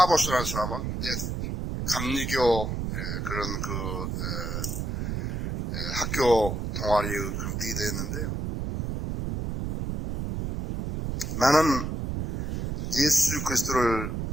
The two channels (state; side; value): noise; right; rumble, 3 dB below the sound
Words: 사람은 이제 감리교 그런 학교 동아리의 그런 리더였는데요. 나는 예수 그리스도를